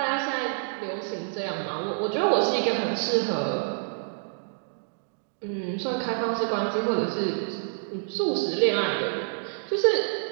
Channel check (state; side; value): silent; left; digital silence